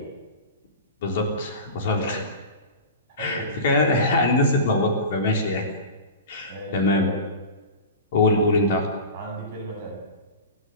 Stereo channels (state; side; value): inverted; both; correlation -0.31